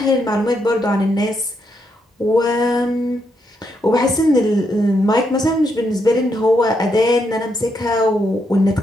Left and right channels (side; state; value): both; normal; correlation 0.79